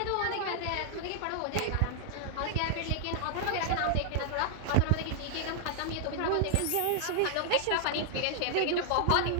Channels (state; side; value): different; both; correlation 0.00